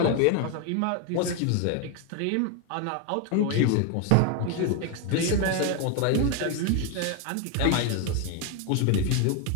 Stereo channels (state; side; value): different; both; correlation 0.01